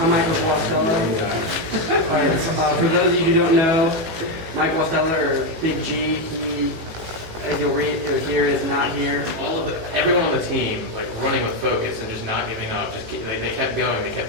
Michael Guastella. For those of you who don't know, Mike Guastella, or Big G, he, as you'll read or hear, is not here. Everyone on the team, like running with focus and just not giving up. They kept going. They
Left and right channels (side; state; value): left; late; 19 ms